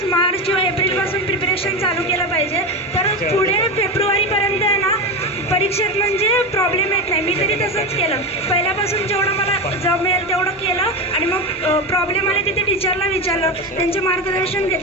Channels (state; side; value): normal; both; correlation 0.19